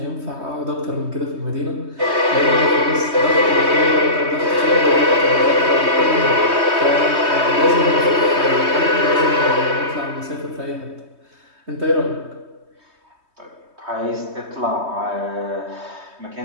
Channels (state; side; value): late; left; 3.2 ms